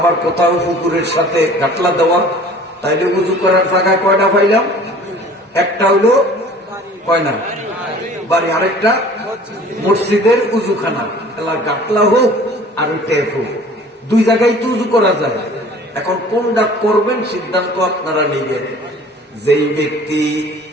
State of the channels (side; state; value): both; normal; correlation 0.48